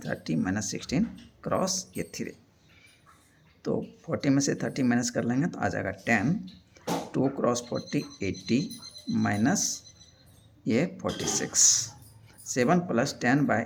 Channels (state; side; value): identical; both; correlation 1.00